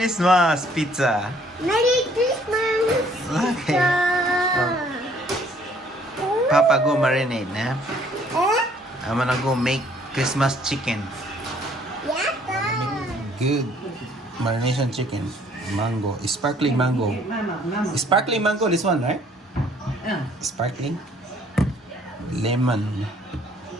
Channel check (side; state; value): both; normal; correlation 0.61